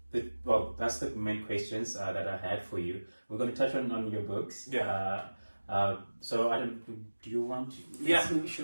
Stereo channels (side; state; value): both; inverted; correlation -1.00